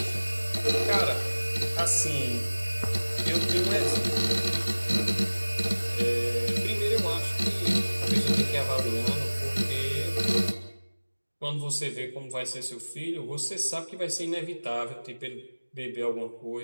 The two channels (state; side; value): inverted; both; correlation -1.00